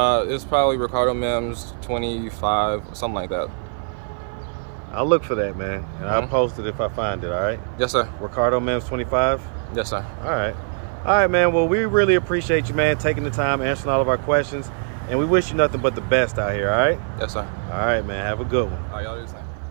It's probably recardomims 25, something like that. I'll look for that, man, and I'll post it if I find it, all right? Yes, sir. recardomims 25? Yes, sir. All right, man. Well, we really appreciate you, man, taking the time, answering all of our questions, and we wish you nothing but the best out here, all right? Yes, sir. All right, man. Have a good one. All right, y'all do the same.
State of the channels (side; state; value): left; silent; 55 dB below the other